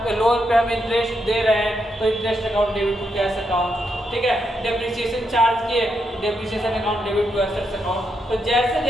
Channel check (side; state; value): both; normal; correlation 0.81